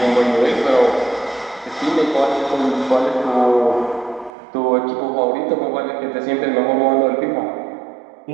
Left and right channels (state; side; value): drops out; left; at 4.3 s